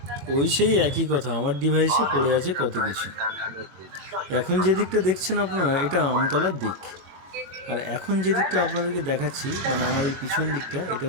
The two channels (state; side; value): late; left; 21 ms